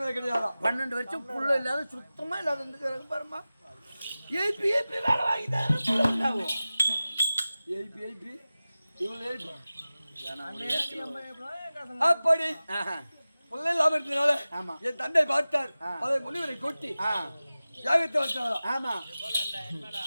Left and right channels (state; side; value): inverted; both; correlation -0.97